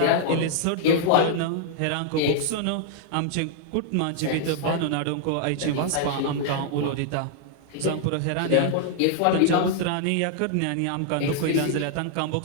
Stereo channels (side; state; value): both; different; correlation 0.00